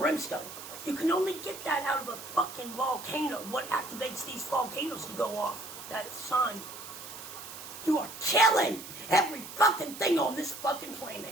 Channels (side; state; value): right; noise; hiss, 12 dB below the sound